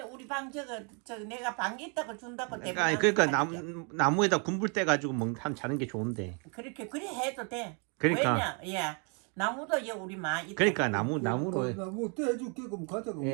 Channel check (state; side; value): quieter; left; 36.5 dB